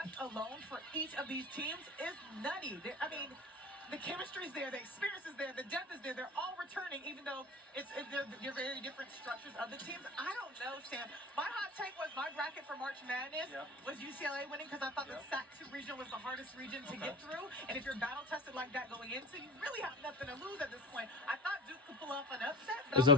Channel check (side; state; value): both; normal; correlation 0.35